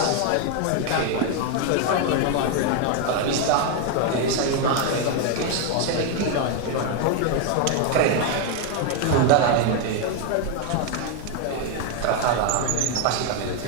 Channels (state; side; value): different; both; correlation 0.01